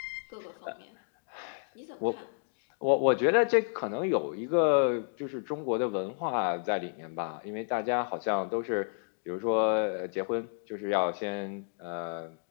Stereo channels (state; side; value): silent; right; 57 dB below the other